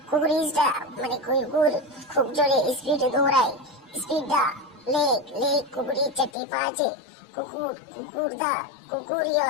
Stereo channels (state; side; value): drops out; right; at 6.3 s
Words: কুকুর ইজ দা মানে কুকুর খুব জোরে স্পিডে দৌড়ায়। স্পিড দা লেগ, লেগ কুকুরের চারটি পা আছে। কুকুর, কুকুর দা কুকুরই